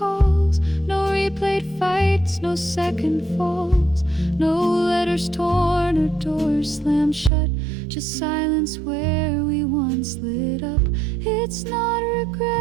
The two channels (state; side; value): drops out; left; at 7.3 s